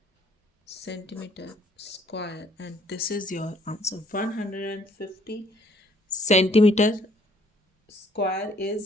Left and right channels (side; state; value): both; normal; correlation 0.62